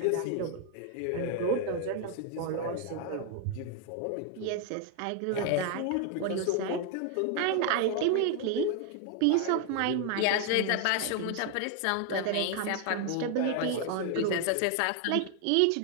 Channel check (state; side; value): different; both; correlation 0.00